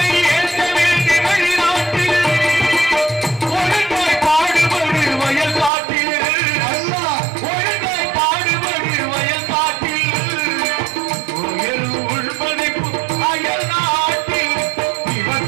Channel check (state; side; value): drops out; left; at 5.7 s